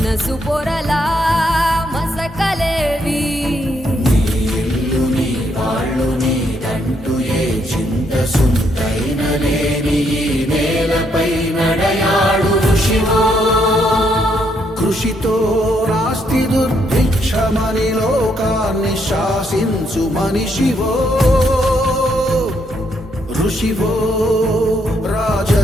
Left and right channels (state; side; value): normal; both; correlation 0.74